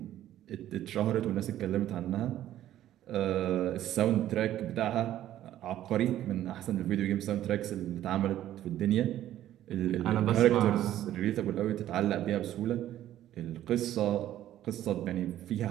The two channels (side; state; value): left; quieter; 12.6 dB